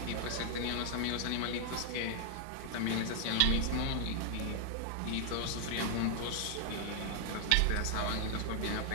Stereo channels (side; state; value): both; different; correlation 0.00